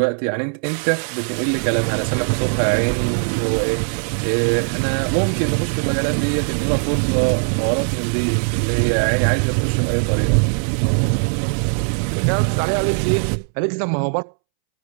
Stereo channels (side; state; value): left; silent; 66 dB below the other